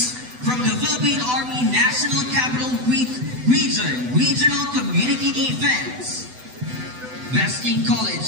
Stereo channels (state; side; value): late; left; 8.0 ms